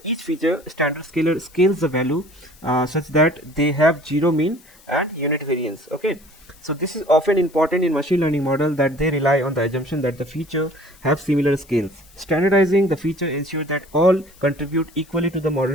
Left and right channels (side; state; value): left; noise; hiss, 27 dB below the sound